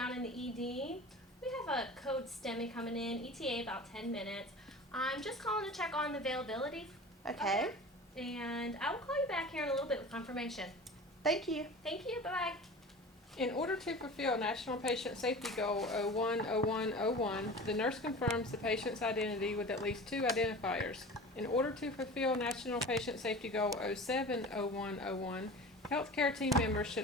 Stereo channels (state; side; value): normal; both; correlation 0.36